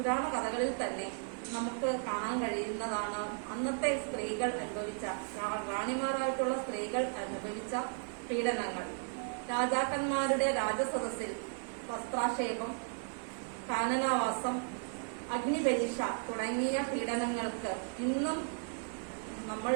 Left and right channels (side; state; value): left; silent; 54 dB below the other